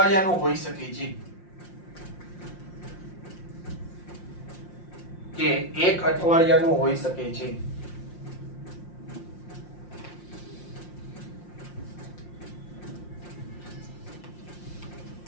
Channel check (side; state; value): right; late; 5.7 ms